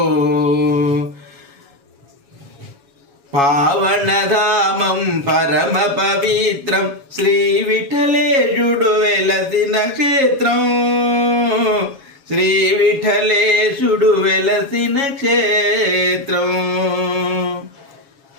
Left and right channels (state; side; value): late; left; 7.2 ms